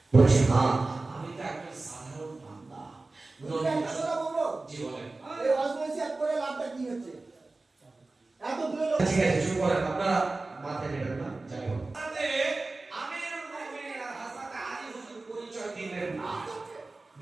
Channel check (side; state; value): left; quieter; 3.3 dB